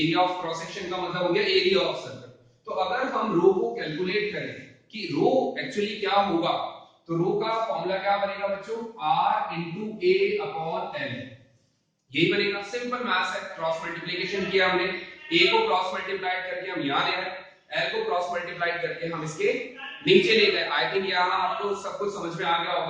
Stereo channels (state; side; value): identical; both; correlation 1.00